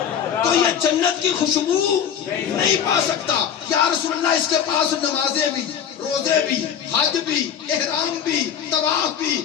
تو یہ جنت کی خوشبو نہیں پا سکتا۔ یا رسول اللہ اس کے پاس نمازیں بھی، روزے بھی، حج بھی، احرام بھی، طواف بھی،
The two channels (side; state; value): right; quieter; 8.5 dB